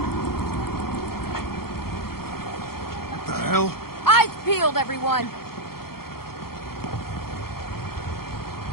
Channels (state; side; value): late; right; 0.94 ms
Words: What the hell? Eyes peeled, everyone.